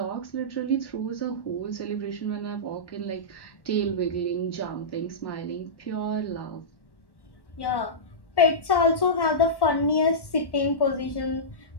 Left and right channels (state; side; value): late; right; 1.1 ms